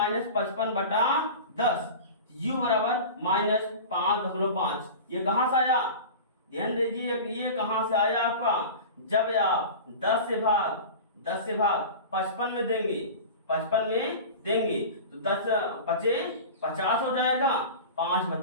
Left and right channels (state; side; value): inverted; both; correlation -0.33